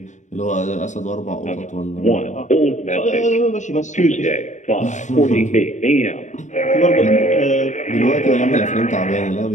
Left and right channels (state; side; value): late; right; 0.35 ms